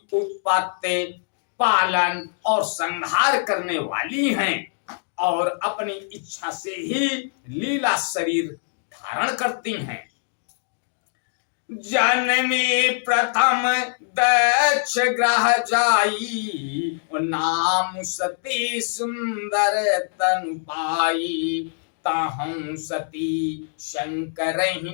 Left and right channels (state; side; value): silent; right; digital silence